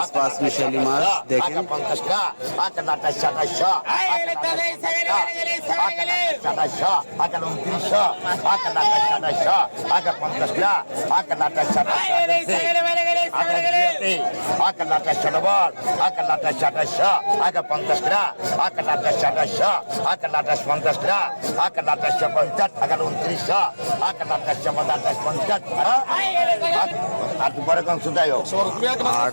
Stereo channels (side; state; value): both; inverted; correlation -1.00